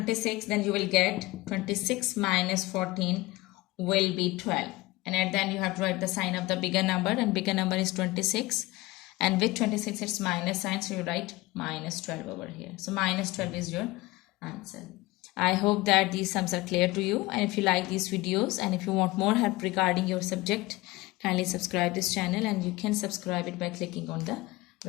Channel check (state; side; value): quieter; right; 20.3 dB